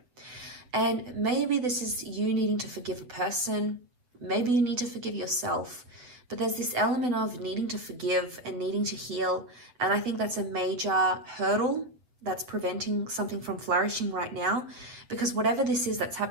And maybe this is you needing to forgive a person. Maybe you need to forgive yourself. But there's this element of needing to forgive and needing to heal. And I think that's a major hurdle that's preventing something from flourishing right now, because whatever this is that's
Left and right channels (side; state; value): left; late; 8.0 ms